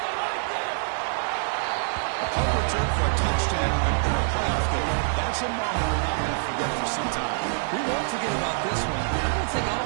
A punt return for a touchdown in a playoff game. That's a moment we're not going to forget for some time. We won't forget about this one. I don't think I'll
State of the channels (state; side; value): silent; left; 61 dB below the other